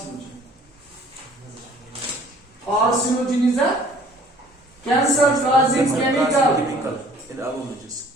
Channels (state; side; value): normal; both; correlation 0.54